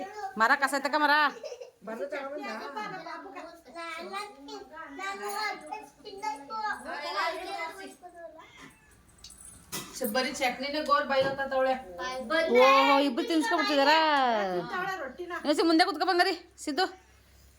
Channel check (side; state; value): both; identical; correlation 1.00